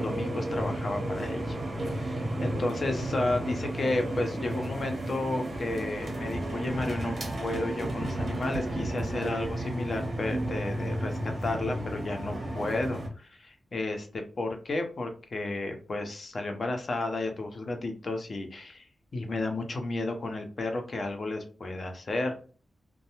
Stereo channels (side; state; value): both; normal; correlation 0.90